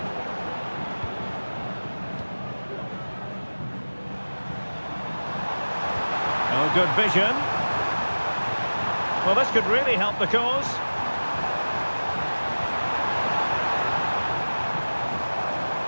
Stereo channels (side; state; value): both; inverted; correlation -1.00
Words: Oh, good vision. Well, this could really help the cause.